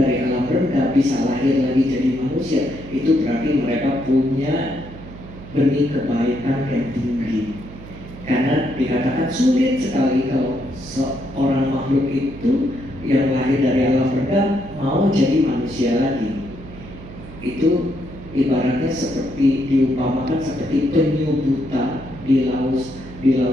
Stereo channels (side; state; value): right; noise; hum, 15 dB below the sound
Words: alam rendah bisa lahir lagi jadi manusia, itu berarti mereka punya benih kebaikan yang tinggi. Karena dikatakan sulit sekali kalau seorang makhluk itu yang lahir dari alam rendah mau jadi manusia lagi. Itu ibaratnya seperti diumpamakan seperti penyu buta di